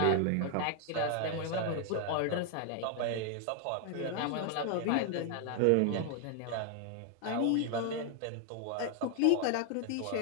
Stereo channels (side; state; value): both; different; correlation 0.00